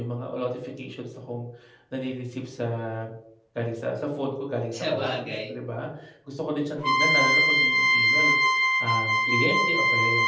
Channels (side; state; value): both; identical; correlation 1.00